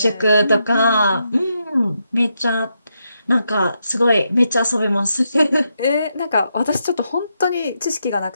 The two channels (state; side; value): inverted; both; correlation -0.82